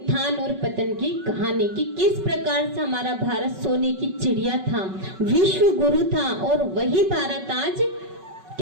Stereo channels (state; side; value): late; left; 5.3 ms